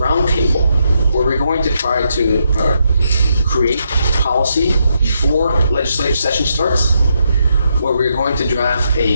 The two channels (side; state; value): both; inverted; correlation -0.79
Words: where we're going to try to create policy before legislative session starts, where we're going to draft